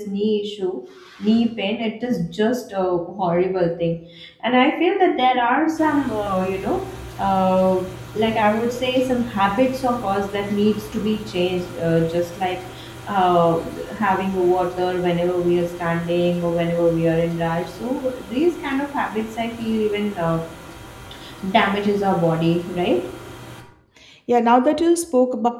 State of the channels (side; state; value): both; identical; correlation 1.00